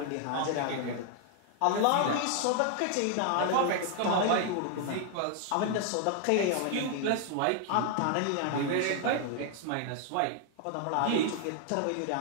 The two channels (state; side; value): different; both; correlation 0.00